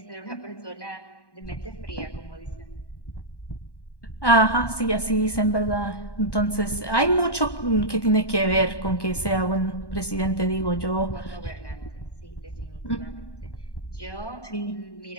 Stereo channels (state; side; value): late; right; 1.1 ms